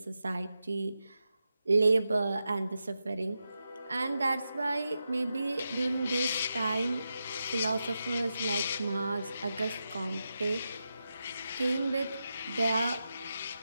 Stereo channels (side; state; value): both; inverted; correlation -0.88